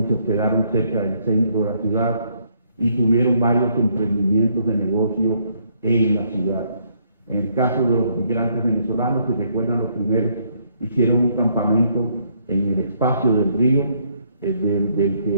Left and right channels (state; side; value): inverted; both; correlation -0.69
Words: se hospedaron cerca del centro de la ciudad y tuvieron varios emprendimientos de negocio en la ciudad. En el caso de los migrantes venezolanos, si recuerdan, los primeros hicieron un campamento en el espacio del río, del